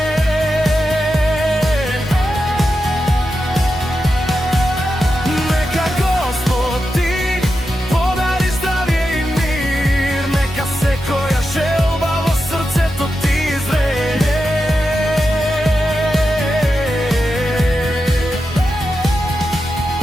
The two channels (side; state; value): both; normal; correlation 0.89